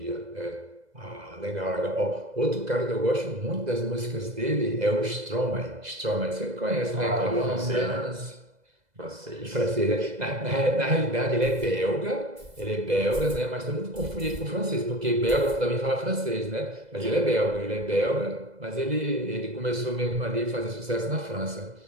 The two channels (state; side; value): late; left; 2.0 ms